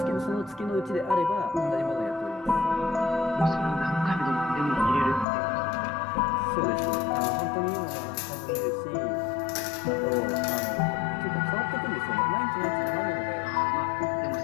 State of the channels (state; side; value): drops out; right; at 5.2 s